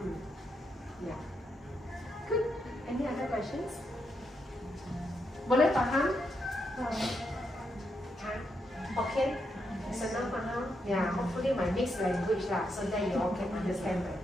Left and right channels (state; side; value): normal; both; correlation 0.81